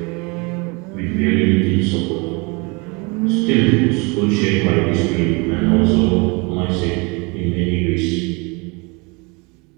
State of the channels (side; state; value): left; quieter; 29.1 dB